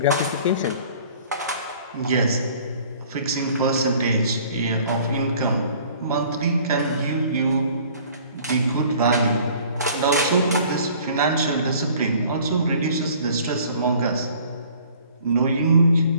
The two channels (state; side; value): inverted; both; correlation -0.52